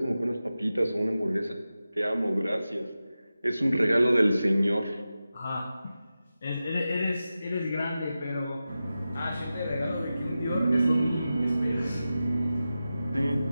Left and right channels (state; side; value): inverted; both; correlation -0.93